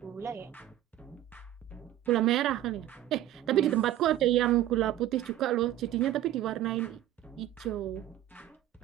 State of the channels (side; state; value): left; quieter; 13.3 dB